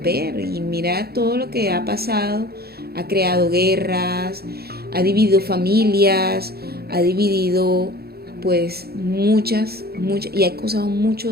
Y mira todo lo que ha pasado, ha creado guerras, ha dividido familias, ha dividido pues muchas, y ha causado mucho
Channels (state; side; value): late; left; 0.46 ms